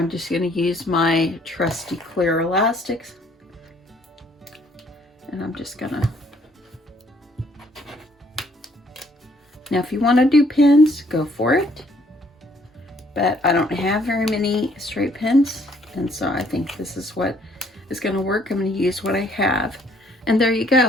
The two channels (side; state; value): both; normal; correlation 0.64